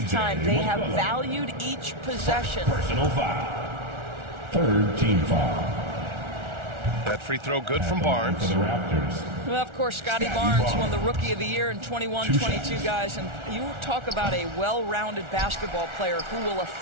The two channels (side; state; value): left; late; 1.4 ms